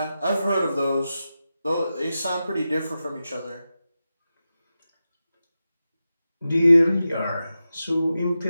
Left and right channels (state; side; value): inverted; both; correlation -0.92